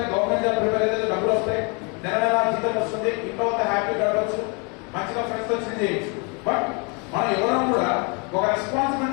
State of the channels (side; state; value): right; quieter; 32.4 dB